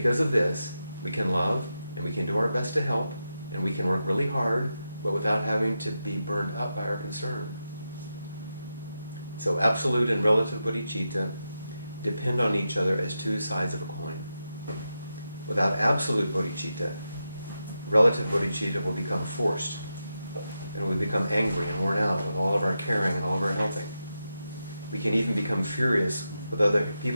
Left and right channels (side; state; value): both; inverted; correlation -0.88